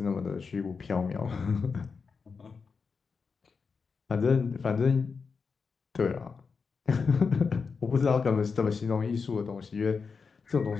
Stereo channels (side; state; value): right; quieter; 5.2 dB